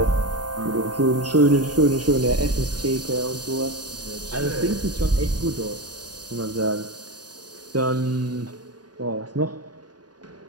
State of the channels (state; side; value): late; left; 0.69 ms